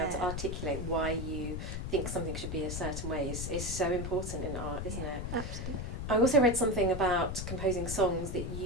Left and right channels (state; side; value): noise; left; rumble, 5 dB below the sound